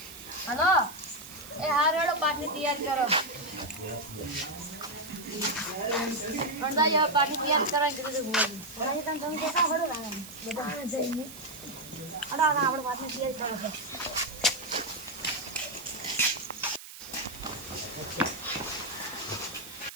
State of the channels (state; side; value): noise; right; hiss, 14 dB below the sound